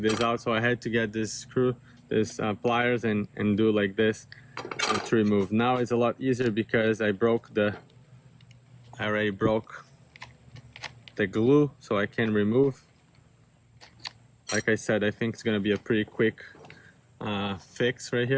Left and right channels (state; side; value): identical; both; correlation 1.00